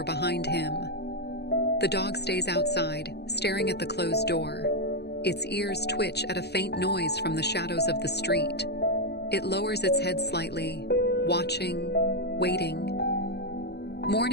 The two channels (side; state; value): right; late; 0.48 ms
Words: behind him. The dog stays outside, staring at the closed door. Its ears twitch at a faint noise from the shadows of the street. It lowers its head slightly, watching, waiting.